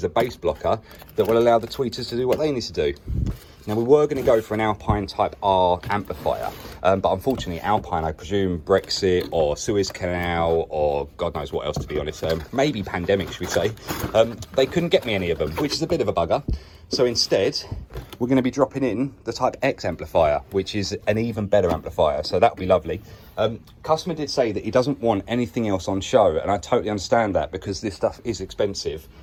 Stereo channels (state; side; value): identical; both; correlation 1.00